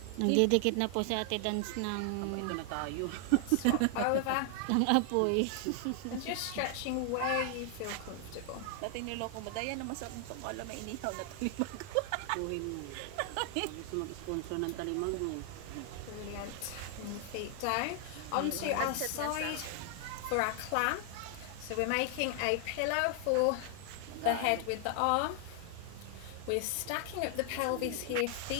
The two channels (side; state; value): both; different; correlation 0.00